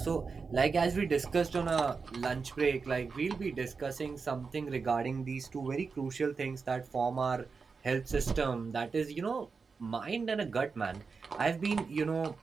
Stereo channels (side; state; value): left; quieter; 4.9 dB